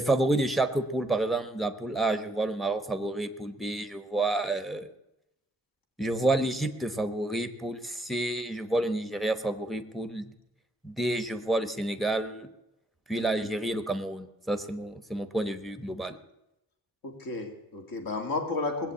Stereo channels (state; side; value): normal; both; correlation 0.69